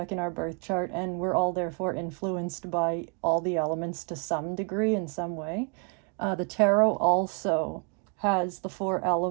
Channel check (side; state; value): left; quieter; 38.4 dB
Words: in our birth chart, and we're all therefore influenced by all the elements to some degree in some way. The tarot also has the 4